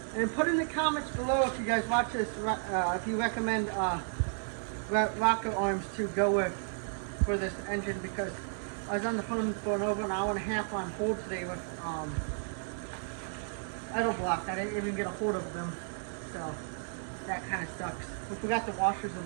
And put in the comments below if you guys watch this, if you recommend rocket arms to go with for this engine, because I was on the phone for over an hour and a half on hold today with idle block. I didn't even get a hold of them, so that kind of sucks. We forgot the washers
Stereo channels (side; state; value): left; silent; digital silence